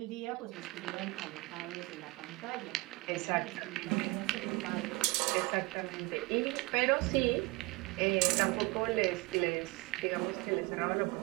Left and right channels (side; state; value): left; quieter; 23.6 dB